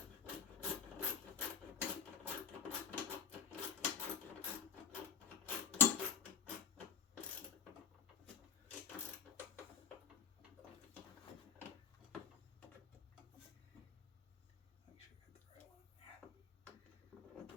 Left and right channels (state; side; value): quieter; right; 7.1 dB